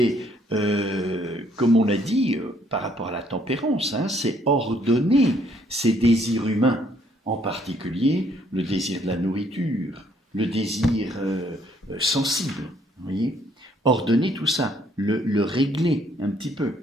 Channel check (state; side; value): normal; both; correlation 0.66